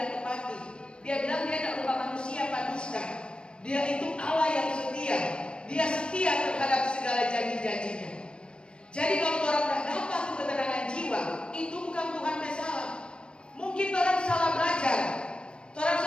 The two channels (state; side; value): late; right; 0.054 ms